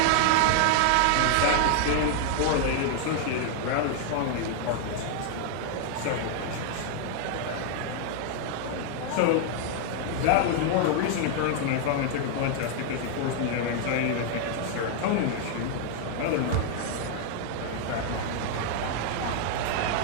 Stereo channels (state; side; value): different; both; correlation 0.00